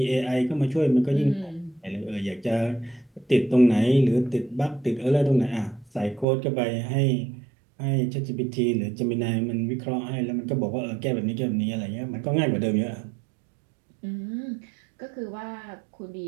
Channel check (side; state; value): left; drops out; at 6.2 s